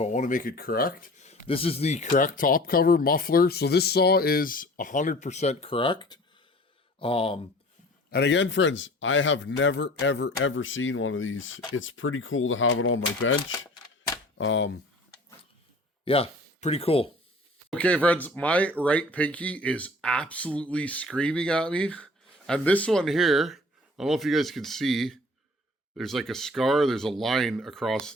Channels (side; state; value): both; normal; correlation 0.46